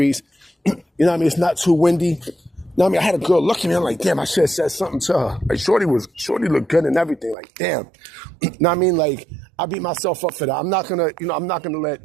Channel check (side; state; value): left; drops out; at 7.4 s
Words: It's not too windy. I had a girl look at me. I'm like, damn, I should have said something to her. Like, Shorty looked good and everything. Like, damn. Like, I beat myself up for that. I'm not gonna let